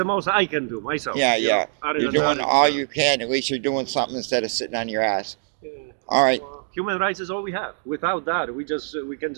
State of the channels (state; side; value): silent; left; digital silence